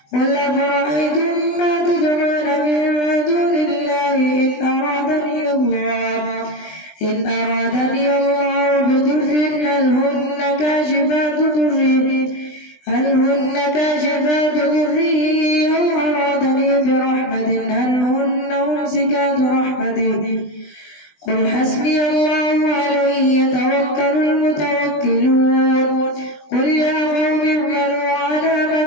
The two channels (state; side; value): late; right; 20 ms